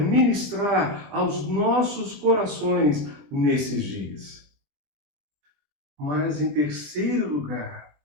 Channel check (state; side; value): late; left; 20 ms